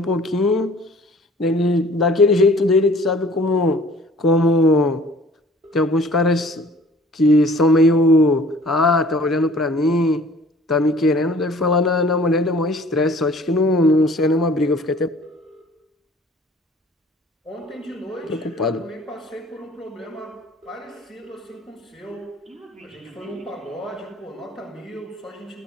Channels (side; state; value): both; normal; correlation 0.52